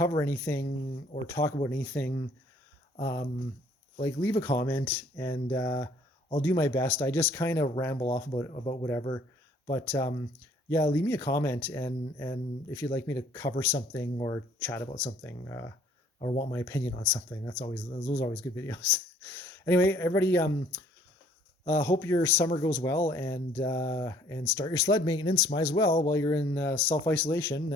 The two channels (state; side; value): normal; both; correlation 0.59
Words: anything or talk about anything, like leave a comment and I'll do my best. I just kind of ramble off about whatever, but yeah, leave me a comment and if you'd like me to cover something or chat about something or want my opinion on something, those are always good videos. Anyway, everybody, hope your summer goes well and start your sled maintenance. Might as well while you're in self-isolation